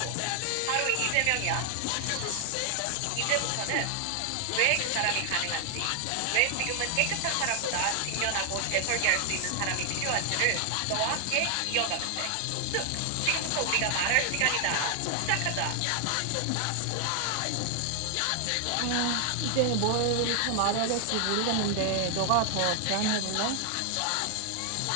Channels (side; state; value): both; different; correlation 0.00